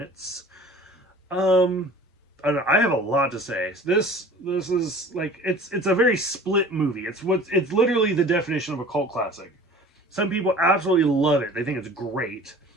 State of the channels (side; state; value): both; normal; correlation 0.44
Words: I don't know, I have a lot to say. This is like it's a very split movie. It's literally the definition of a cult classic. Some people absolutely love it. They think it's great.